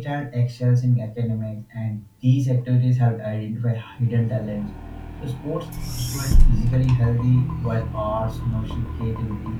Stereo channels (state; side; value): identical; both; correlation 1.00